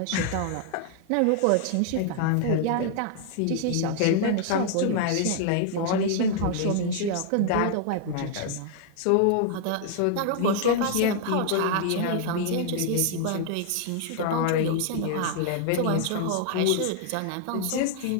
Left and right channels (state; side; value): different; both; correlation 0.00